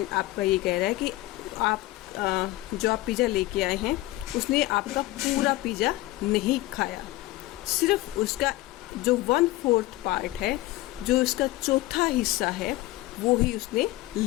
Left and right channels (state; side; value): quieter; right; 18.0 dB